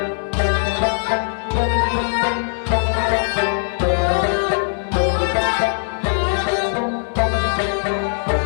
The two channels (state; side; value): silent; right; digital silence